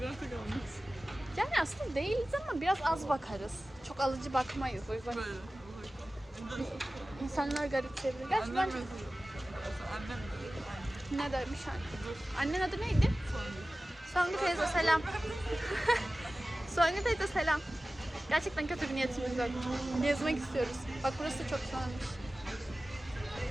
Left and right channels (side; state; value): both; normal; correlation 0.96